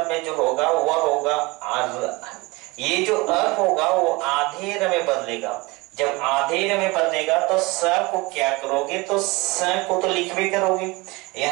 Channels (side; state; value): left; quieter; 24.2 dB